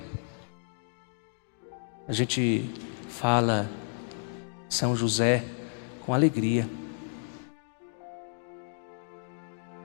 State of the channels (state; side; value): silent; right; digital silence